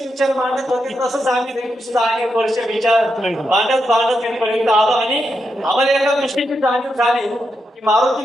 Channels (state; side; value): normal; both; correlation 0.85